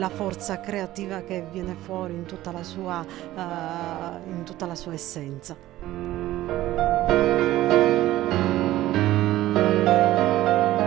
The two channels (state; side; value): quieter; left; 15.4 dB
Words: forza creativa che viene fuori in tutta la sua essenza.